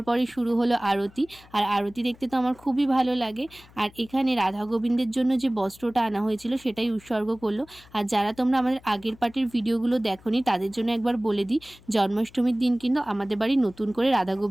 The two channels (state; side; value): noise; left; hum, 25 dB below the sound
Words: পরে শুরু হলো আরতি। আর আরতি দেখতে তো আমার খুবই ভালো লাগে। আর এখানে রাধা গোবিন্দের জন্য যে বস্ত্রটা আনা হয়েছিল সেটাই উৎসর্গ করলো। আর যারা তোমরা আমাদের আগের পার্টির ভিডিওগুলো দেখোনি তাদের জন্য একবার বলে দিই, জন্মাষ্টমীর দিন কিন্তু আমাদের বাড়ি নতুন করে রাধা